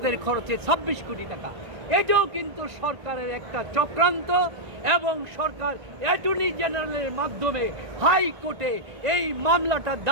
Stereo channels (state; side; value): late; left; 1.9 ms